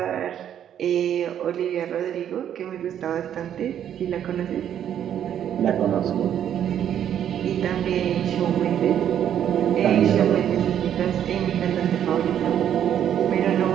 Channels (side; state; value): left; quieter; 9.9 dB